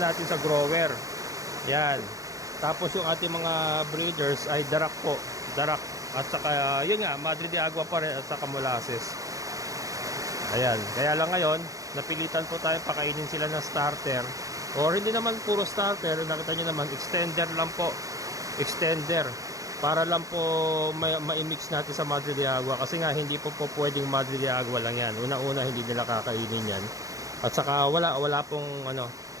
natin sa grower. Yan. Tapos yung ating mga breeders ay darak po, darak. At saka yun nga, Madre de Agua pa rin at saka molasses. Ayan, kaya lang ngayon napilitan po tayo pakainin sila ng starter, or hindi naman puro starter, nakita nyo naman extender lang po, extender, para lang po ma-mix natin sa Madre de Agua, kasi nga hindi po pwedeng Madre de Agua lang yan. Una-una hindi nila kakainin yan, at saka wala pong ano,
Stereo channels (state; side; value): late; left; 0.16 ms